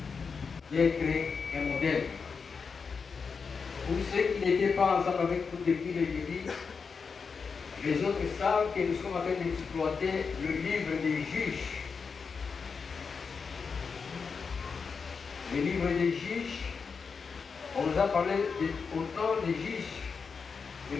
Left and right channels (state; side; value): quieter; right; 5.4 dB